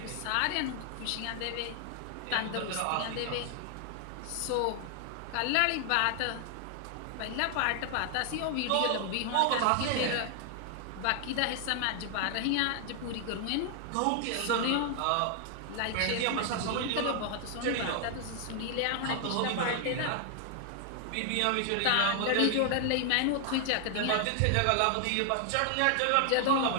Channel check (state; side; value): different; both; correlation 0.00